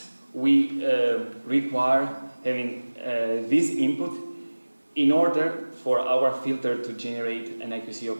we require having this input in order for our filter to generate an IQC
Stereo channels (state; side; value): inverted; both; correlation -1.00